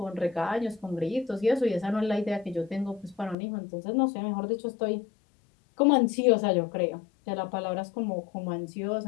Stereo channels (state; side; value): drops out; right; at 3.4 s